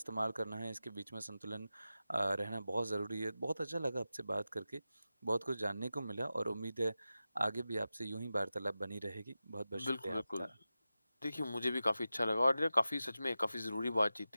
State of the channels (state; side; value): inverted; both; correlation -0.93